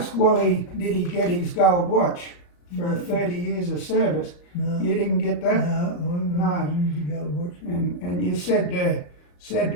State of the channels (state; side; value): late; right; 34 ms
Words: Wally, did he get his gold watch for 30 years of service? No. You didn't get that? No. Gold watch. And you said